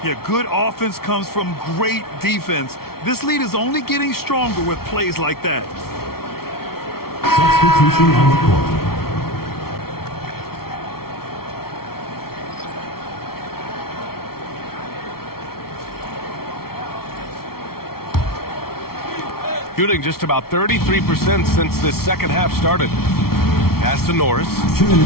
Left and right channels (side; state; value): right; late; 0.94 ms